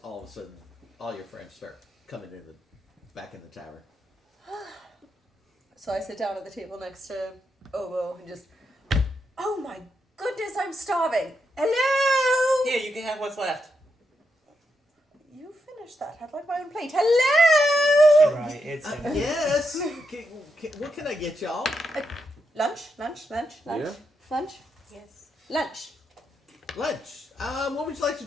all of a sudden, all your friends start coming back in the tavern. So I sit down at the table next to Obo and just, oh my goodness, I'm starving. Hello? Here, you can have what's left. You finished that. I'd like my own plate. Hello? Right, it's in Yes. What can I get y'all? Lunch? Yeah. Lunch? Yes. Lunch. Lunch. What would you like to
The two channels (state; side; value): normal; both; correlation 0.83